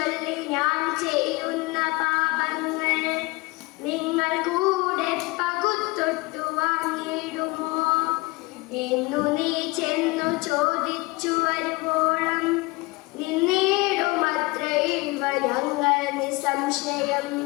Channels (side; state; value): right; quieter; 23.9 dB